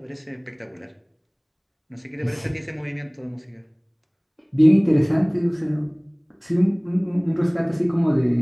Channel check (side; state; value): both; identical; correlation 1.00